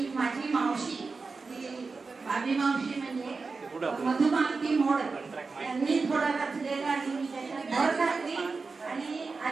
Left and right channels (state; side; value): quieter; left; 4.3 dB